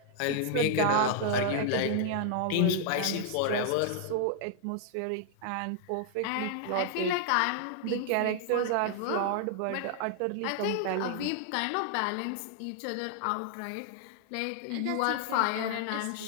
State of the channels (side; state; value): both; different; correlation 0.00